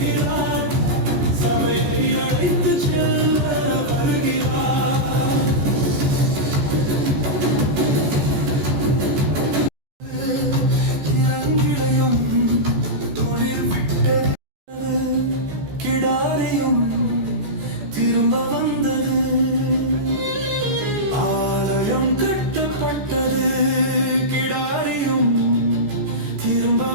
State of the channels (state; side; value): late; left; 14 ms